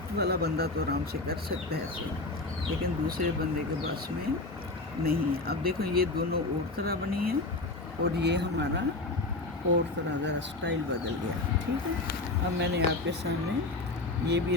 वाला बंदा तो आराम से कर सकता है ऐसे, लेकिन दूसरे बंदे के बस में नहीं है। अब देखो ये दोनों और तरह बनी है और ये हमारा और तरह ज़रा स्टाइल बदल गया, ठीक है। अब मैंने आपके सामने ये भी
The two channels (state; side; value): quieter; right; 3.1 dB